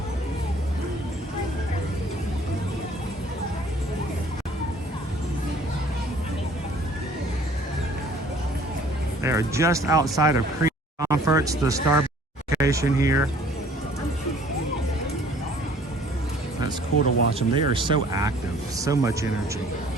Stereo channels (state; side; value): normal; both; correlation 0.54